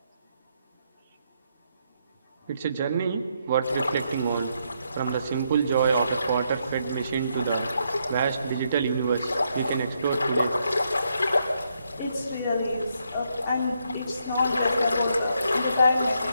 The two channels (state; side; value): inverted; both; correlation -0.77